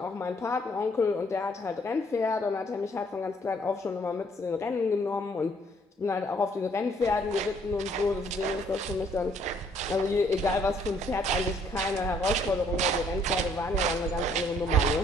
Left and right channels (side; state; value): both; normal; correlation 0.65